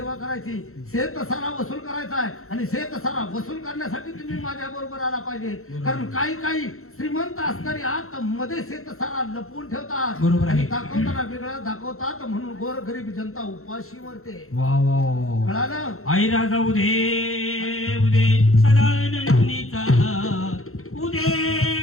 करायची. शेतसारा वसूल करायचा आहे आणि शेतसारा वसूल करण्यासाठी तुम्ही माझ्या बरोबर आला पाहिजे. कारण काही काही श्रीमंत असणारी आत मध्ये शेतसारा लपवून ठेवतात. बरोबर आहे. आणि दाखवताना वेगळं दाखवतात म्हणून गोरगरीब जनता उपाशी मरते. वा वा वा. कळालं? आई राजा उदे उदे सदानंदीचा उदे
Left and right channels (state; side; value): late; right; 0.63 ms